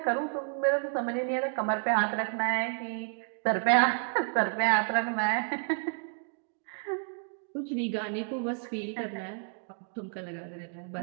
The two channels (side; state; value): left; silent; 57 dB below the other